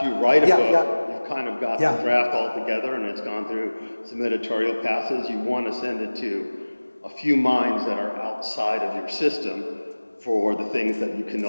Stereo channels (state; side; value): inverted; both; correlation -1.00